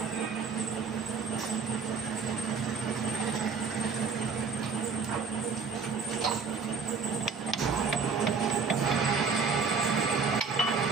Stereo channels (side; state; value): left; quieter; 5.3 dB